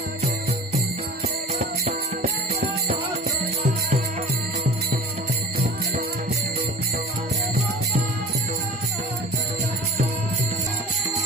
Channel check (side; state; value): both; normal; correlation 0.41